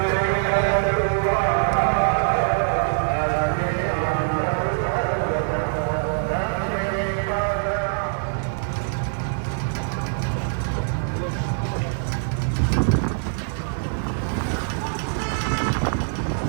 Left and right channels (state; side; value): silent; left; digital silence